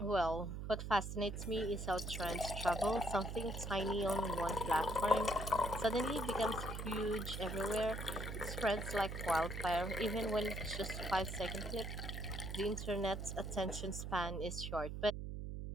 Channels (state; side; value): noise; right; hum, 5 dB below the sound